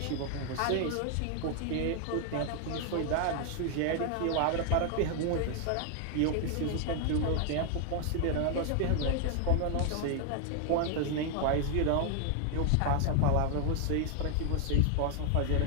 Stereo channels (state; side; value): different; both; correlation 0.00